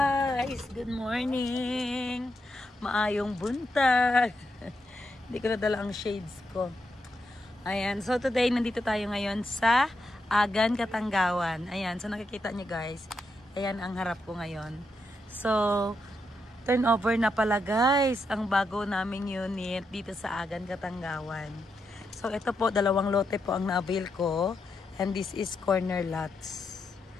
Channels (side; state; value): both; normal; correlation 0.83